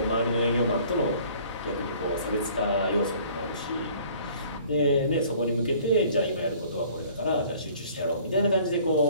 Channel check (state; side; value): inverted; both; correlation -0.53